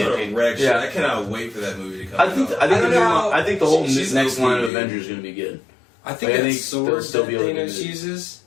gonna wreck shit. yeah. I cannot wait for that movie to come I out. think I don't know. I think the whole She's next line of OP, dude. Avengers is gonna be good. I think Like, I that think sword they'll still that be able to Thanos do it. uses.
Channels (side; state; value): right; drops out; at 4.7 s